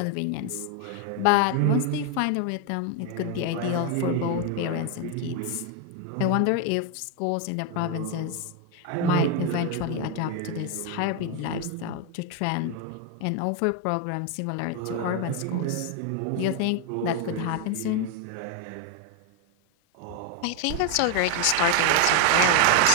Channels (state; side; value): different; both; correlation 0.01